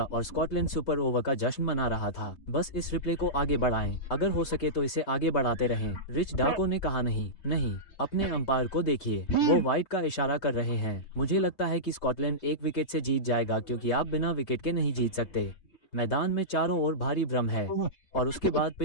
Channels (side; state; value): right; late; 5.2 ms